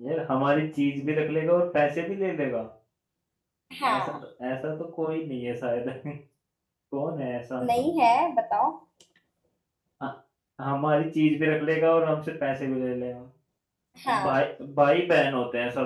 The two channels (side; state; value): both; identical; correlation 1.00